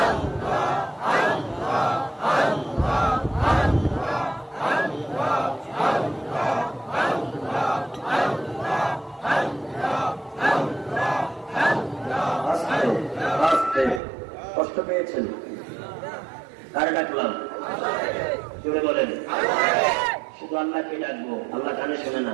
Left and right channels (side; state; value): left; drops out; at 14.0 s